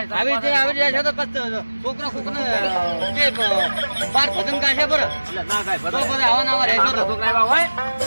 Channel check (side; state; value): both; inverted; correlation -1.00